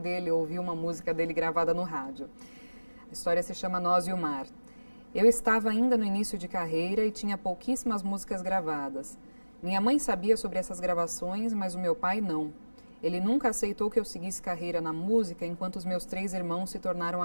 ouviu uma música dele gravada no rádio. A história se chama Nós e o Mar. Eu estava ainda no início de carreira e tinha pouquíssimas músicas gravadas. Minha mãe sabia sobre essas gravações, mas o meu pai não. Ele nunca aceitou que eu seguisse carreira na música enquanto os meus 3 irmãos se tornaram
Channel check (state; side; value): inverted; both; correlation -1.00